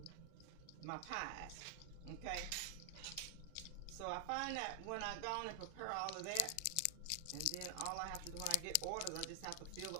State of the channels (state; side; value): different; both; correlation 0.00